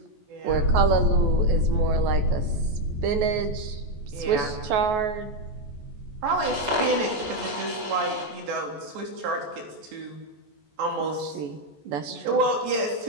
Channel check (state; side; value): late; left; 14 ms